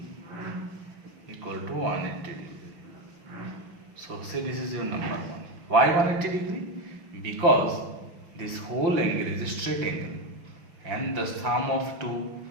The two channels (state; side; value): late; left; 5.9 ms